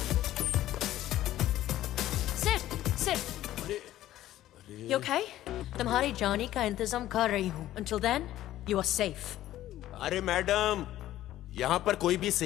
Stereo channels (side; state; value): right; quieter; 13.8 dB